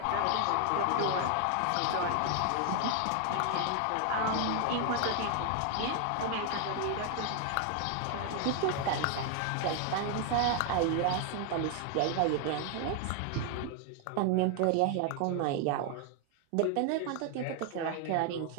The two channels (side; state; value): both; different; correlation 0.00